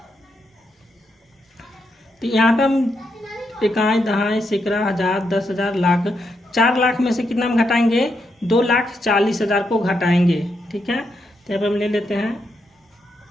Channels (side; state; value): both; normal; correlation 0.81